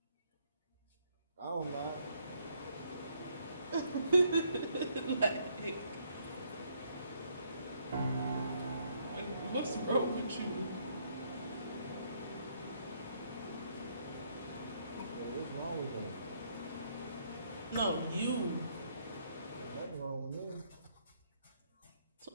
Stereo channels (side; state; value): both; inverted; correlation -0.70